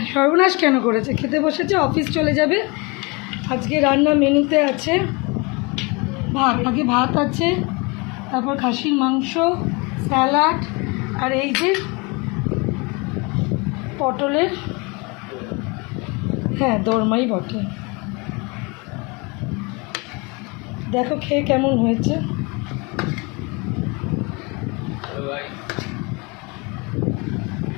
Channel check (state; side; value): quieter; right; 28.5 dB